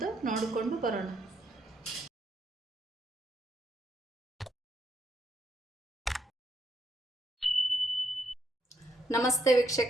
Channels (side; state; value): both; normal; correlation 0.76